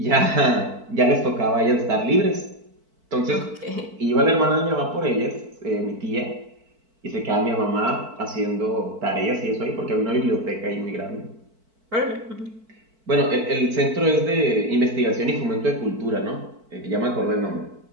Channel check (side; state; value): left; late; 4.5 ms